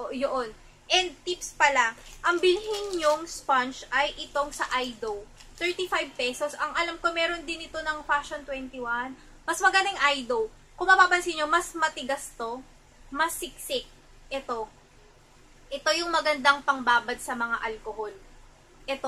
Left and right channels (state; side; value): identical; both; correlation 1.00